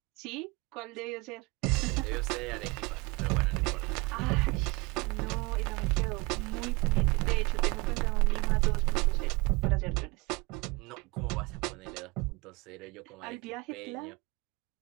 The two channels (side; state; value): left; quieter; 25.8 dB